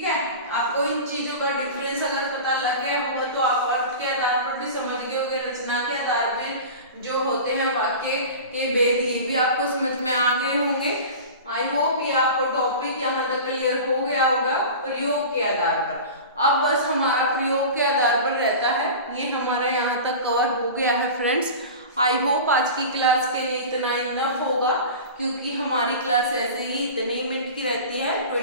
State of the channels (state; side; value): inverted; both; correlation -0.33